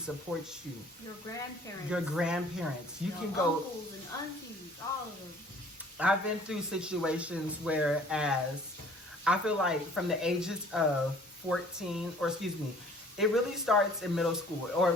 you. Your grandparents. Your grandparents. You your can go. Uncles and aunties, all of them. I've been through situations where, as I feel like from the ages of 14, or excuse me, it really starts in middle school, or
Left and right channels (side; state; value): both; normal; correlation 0.53